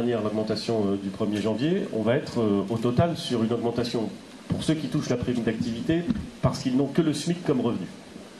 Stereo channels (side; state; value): both; identical; correlation 1.00